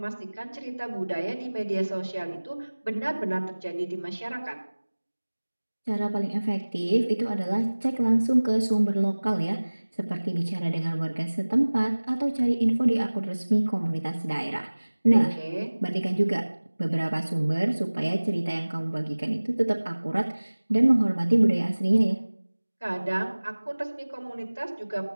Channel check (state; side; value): inverted; both; correlation -1.00